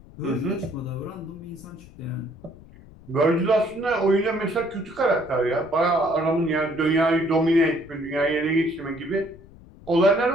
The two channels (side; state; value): left; noise; rumble, 21 dB below the sound